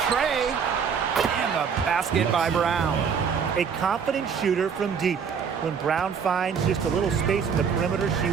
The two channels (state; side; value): quieter; left; 6.6 dB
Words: tray. And the basket by Brown. A confident shooter from deep. When Brown finds just a little space in the perimeter, she